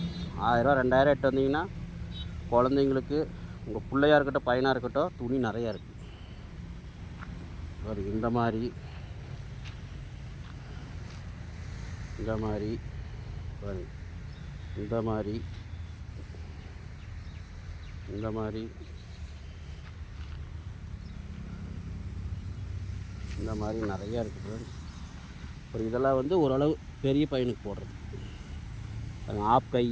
1000 ரூபா 2000 எட்டு வந்தீங்கன்னா குழந்தைங்களுக்கு, உங்கள் பிள்ளையாக இருக்கட்டும் பையனாக இருக்கட்டும், துணி நிறையா இருக்குது. இந்த மாதிரி பாருங்க, இந்த மாதிரி நிறையா இருக்குது ஃப்ரெண்ட்ஸ். அப்புறம் இதெல்லாம் வந்து ஓரளவு பெரிய பையனுக்கு போடுறது. ஆப்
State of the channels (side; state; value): both; identical; correlation 1.00